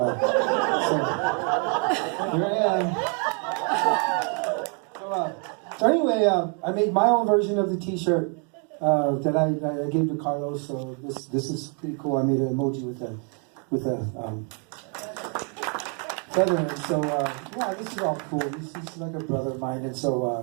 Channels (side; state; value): left; quieter; 39.7 dB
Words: I am. So anyway, I made my own version of the T-shirt that I gave to Carlos. So this is pretty cool. I made an emoji with a feather, and so yeah, this is all cool. He's like a brother of mine, and